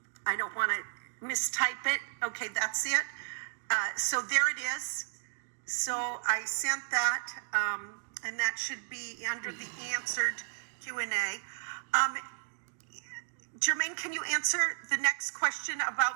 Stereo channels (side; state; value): left; silent; digital silence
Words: I don't want to mistype it. Okay, that's it. So there it is. So I sent that, and that should be under the answered Q&A. Jermaine, can you answer the next question